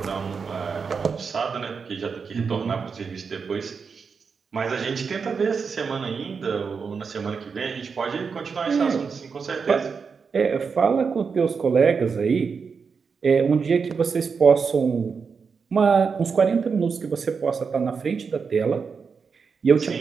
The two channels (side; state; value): left; quieter; 5.6 dB